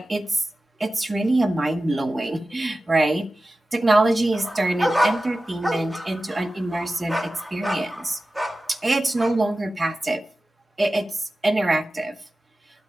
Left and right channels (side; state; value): both; normal; correlation 0.95